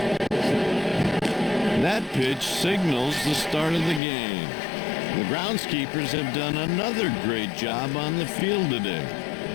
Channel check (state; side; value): drops out; right; at 4.0 s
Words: That pitch signals the start of the game. The groundskeepers have done another great job on the field today.